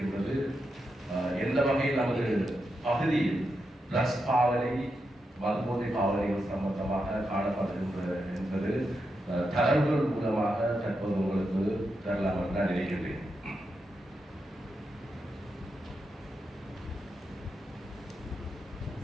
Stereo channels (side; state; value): both; normal; correlation 0.86